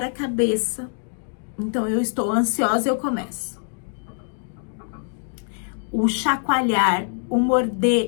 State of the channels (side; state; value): right; silent; 55 dB below the other